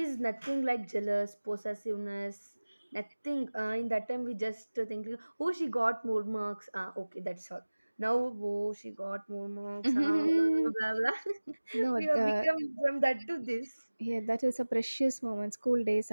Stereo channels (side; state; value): both; inverted; correlation -1.00